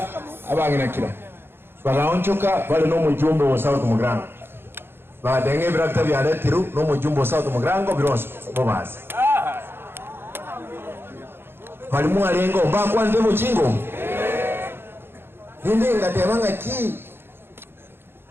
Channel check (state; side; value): late; left; 0.11 ms